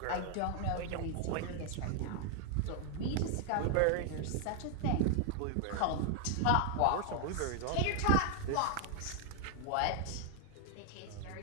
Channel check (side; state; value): both; different; correlation 0.00